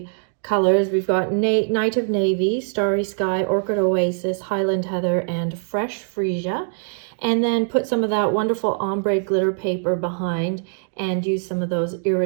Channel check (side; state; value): left; silent; 55 dB below the other